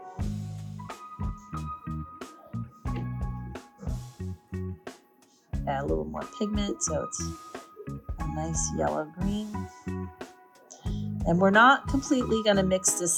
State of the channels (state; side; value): identical; both; correlation 1.00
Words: Add a little more pigment so it's a nice yellow-green. And we're not completely going to mix